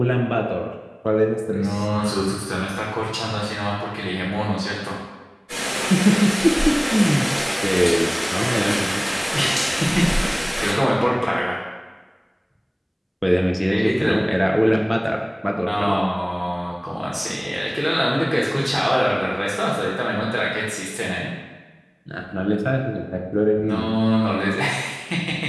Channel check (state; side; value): identical; both; correlation 1.00